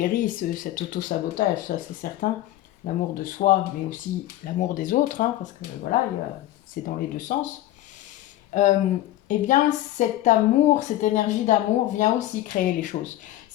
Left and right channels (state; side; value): quieter; right; 14.6 dB